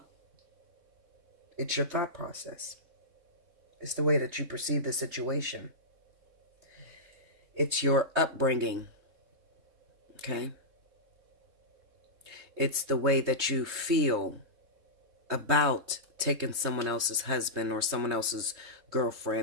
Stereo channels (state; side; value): late; left; 3.7 ms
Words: it's your thought process. It's the way that you perceive the situation. It's your upbringing. Okay? It's the way that you feel about taking someone else's husband or someone else's